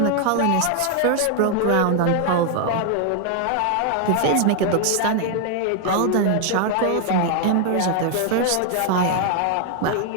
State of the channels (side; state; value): both; different; correlation 0.00